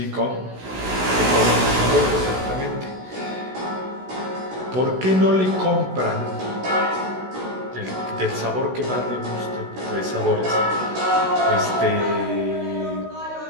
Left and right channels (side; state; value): left; late; 16 ms